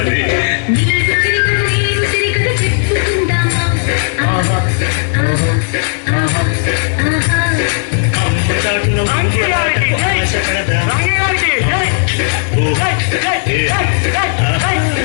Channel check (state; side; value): silent; right; 71 dB below the other